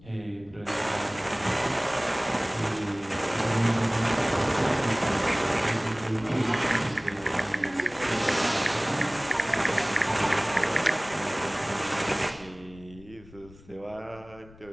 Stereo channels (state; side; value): noise; left; rumble, 22 dB below the sound